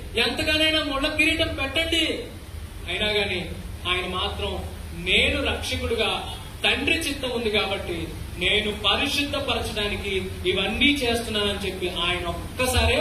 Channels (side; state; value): both; identical; correlation 1.00